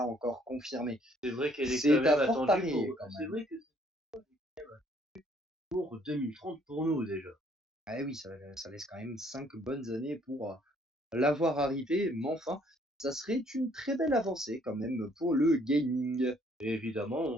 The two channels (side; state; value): both; normal; correlation 0.64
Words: encore confirmée. C'est vrai qu'elle est quand C'est même à fort attendue parier pour. quand C'est même. vrai que c'est pour 2030 pour nous déjà. Ah oui, ça laisse quand même 5 bonnes années pour l'avoir arrivé, mais enfin, ça serait une très belle avancée quand même pour le gaming. Et évidemment, on